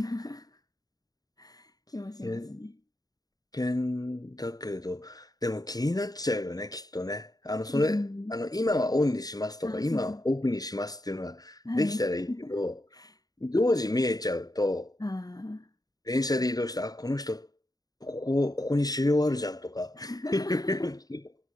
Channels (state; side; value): late; right; 0.18 ms